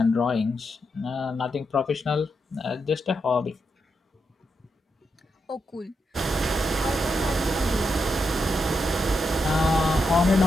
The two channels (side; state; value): both; normal; correlation 0.84